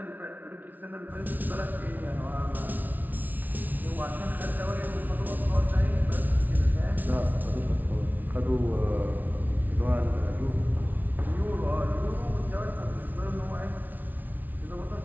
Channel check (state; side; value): late; left; 0.081 ms